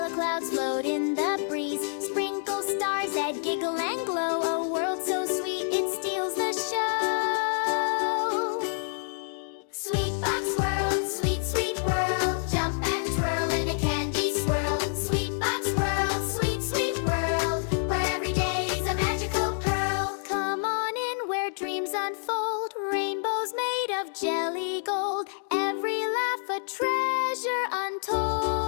clouds float in the breeze. Sprinkle stars that giggle and glow. A world so sweet it steals the show. SweetBox World, sweet, sweet world. Jump and twirl in a candy swirl. SweetBox World, sweet, sweet world, where every day's a magical pearl. Come on in where dreams unfold. Rainbows made of jelly gold. Every laugh a treasure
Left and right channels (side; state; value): right; silent; digital silence